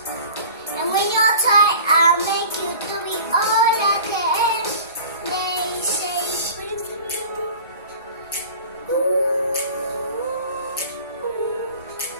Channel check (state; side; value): inverted; both; correlation -0.42